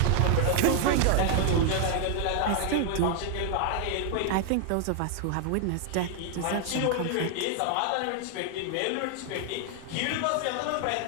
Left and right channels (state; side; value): different; both; correlation 0.00